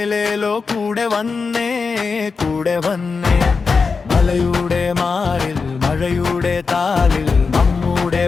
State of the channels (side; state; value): right; quieter; 4.8 dB